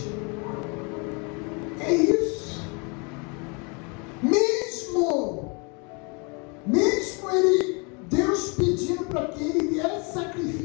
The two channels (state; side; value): quieter; right; 32.3 dB